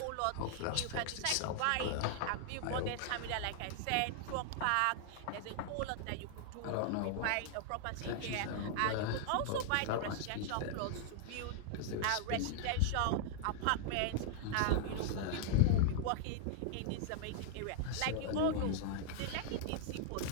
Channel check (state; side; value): different; both; correlation -0.01